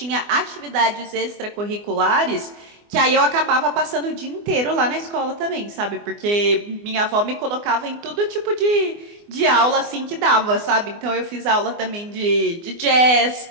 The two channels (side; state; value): left; late; 24 ms